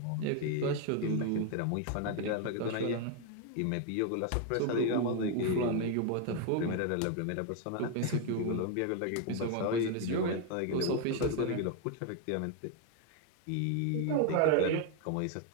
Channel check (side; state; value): both; different; correlation 0.01